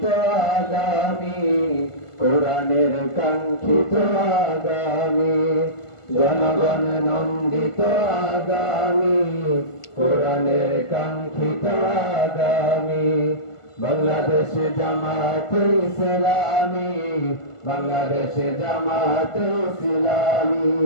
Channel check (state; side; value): late; right; 1.5 ms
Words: আগামী, কোরআনের কাঙ্ক্ষিত আগামী, জনগণের নন্দিত আগামী, কোরআনের কাঙ্ক্ষিত আগামী। বাংলাদেশে জামাতে ইসলামী, বাংলাদেশে জামাতে ইসলামী।